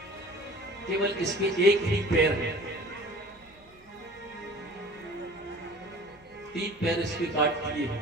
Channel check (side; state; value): right; noise; hum, 29 dB below the sound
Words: केवल इसके एक ही पैर है, 3 पैर इसके काट दिए